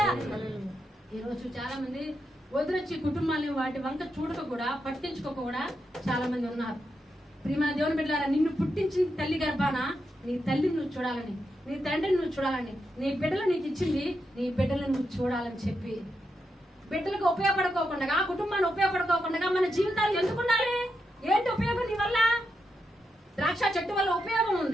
ఈ రోజు చాలా మంది వదిలొచ్చి కుటుంబాన్ని వాటి వంక చూడక కూడా, పట్టించుకోక కూడా చాలా మంది ఉన్నారు. ప్రియమైన దేవుని బిడ్డలారా, నిన్ను పుట్టించిన తల్లి గర్భాన నీ తల్లిని నువ్వు చూడాలని, నీ తండ్రిని నువ్వు చూడాలని, నీ బిడ్డలు నీకు ఇచ్చింది నీ బిడ్డలను నువ్వు చూడాలని చెప్పి, బిడ్డలకు ఉపయోగపడుకోకుండా, కుటుంబాన్ని ఉపయోగపడుకోకుండా మన జీవితాలు ఎందుకు ఉండాలి? ఏంటి ఉపయోగం నీ వల్ల? ద్రాక్ష చెట్టు వల్ల ఉపయోగం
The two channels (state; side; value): normal; both; correlation 0.85